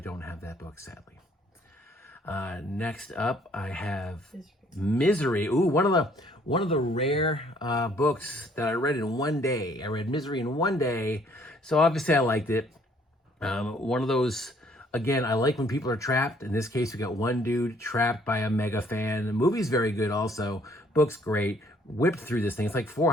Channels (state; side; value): normal; both; correlation 0.62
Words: have that book, sadly. Next up, I have Misery. Ooh, one of the rare books that I read in one day. I read Misery in one day, so obviously I liked it. One of those, again, I like when people are trapped. In this case, we got one dude trapped by a mega fan. The movie's very good also. Book's great. Whipped through this thing. It's